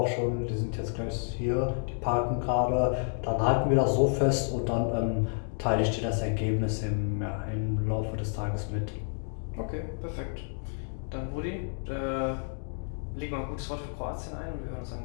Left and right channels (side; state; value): right; silent; 58 dB below the other